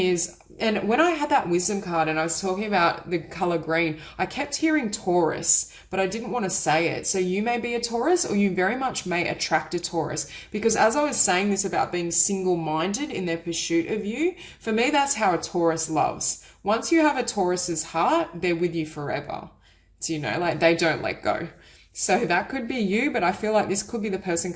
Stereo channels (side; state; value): both; identical; correlation 1.00